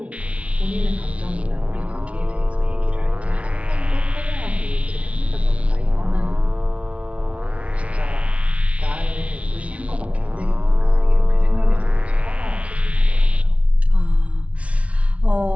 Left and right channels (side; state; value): left; late; 0.064 ms